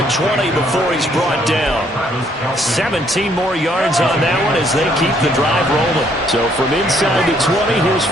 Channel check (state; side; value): normal; both; correlation 0.67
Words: 20 before he's brought down. 17 more yards on that one as they keep the drive rolling. So from inside the 20, here's